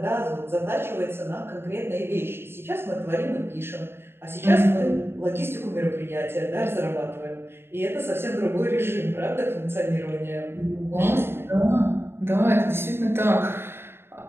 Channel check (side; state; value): left; late; 0.11 ms